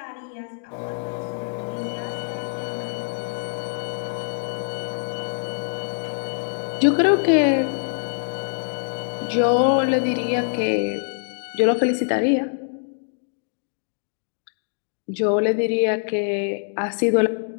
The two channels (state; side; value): silent; right; digital silence